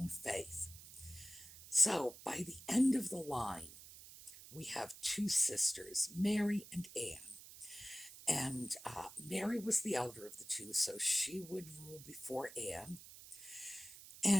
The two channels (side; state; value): right; noise; hiss, 16 dB below the sound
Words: faith. So by the end of the line, we have 2 sisters, Mary and Anne. And Mary was the elder of the 2, so she would rule before Anne.